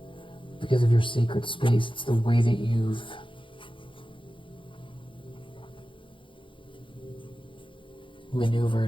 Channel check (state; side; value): late; right; 0.25 ms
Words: Because of your sacred space, it's the way that you've